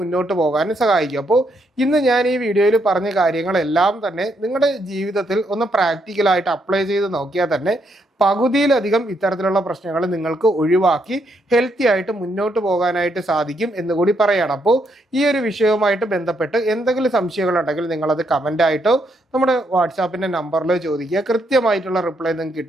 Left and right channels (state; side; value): normal; both; correlation 0.76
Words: പോകാനും സഹായിക്കും. അപ്പോൾ ഇന്ന് ഞാൻ ഈ വീഡിയോയിൽ പറഞ്ഞ കാര്യങ്ങളെല്ലാം തന്നെ നിങ്ങളുടെ ജീവിതത്തിൽ ഒന്ന് പ്രാക്ടിക്കലായിട്ട് അപ്ലൈ ചെയ്ത് നോക്കിയാൽ തന്നെ പകുതിയിലധികം ഇത്തരത്തിലുള്ള പ്രശ്നങ്ങൾ നിങ്ങൾക്ക് ഒഴിവാക്കി ഹെൽത്തി ആയിട്ട് മുന്നോട്ട് പോകാനായിട്ട് സാധിക്കും എന്ന് കൂടി പറയണം. അപ്പോൾ ഈ ഒരു വിഷയവുമായിട്ട് ബന്ധപ്പെട്ട് എന്തെങ്കിലും സംശയങ്ങളുണ്ടെങ്കിൽ നിങ്ങളത് കമൻ്റായിട്ടോ നമ്മുടെ വാട്സാപ്പിൻ്റെ നമ്പറിലോ ചോദിക്കുക. കൃത്യമായിട്ടുള്ള റിപ്ലൈ നിങ്ങൾക്ക്